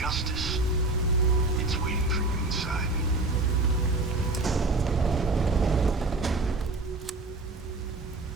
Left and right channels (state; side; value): quieter; left; 3.1 dB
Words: It's waiting for you inside.